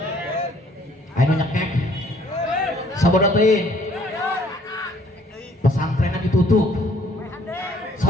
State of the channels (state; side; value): normal; both; correlation 0.61